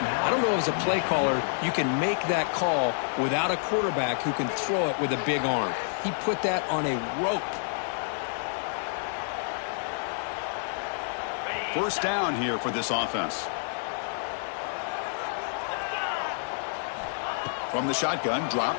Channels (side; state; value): right; silent; digital silence